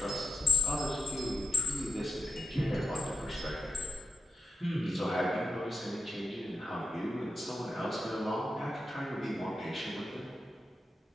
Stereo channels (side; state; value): both; normal; correlation 0.79